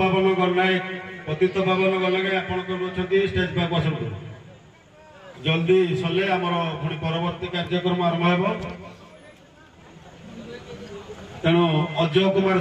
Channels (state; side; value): identical; both; correlation 1.00